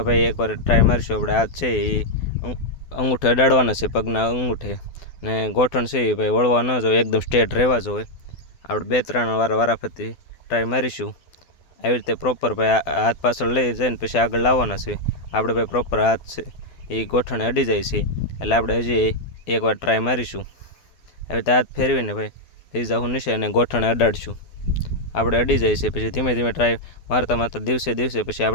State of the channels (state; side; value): late; right; 12 ms